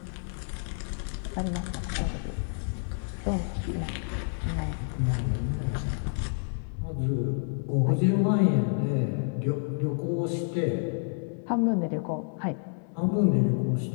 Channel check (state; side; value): silent; right; 59 dB below the other